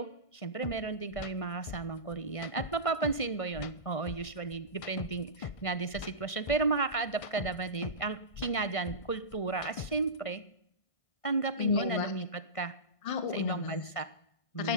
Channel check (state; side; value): late; right; 1.5 ms